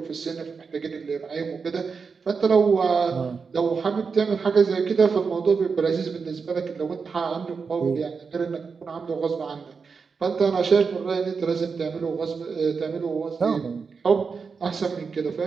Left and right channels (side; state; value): left; quieter; 5.3 dB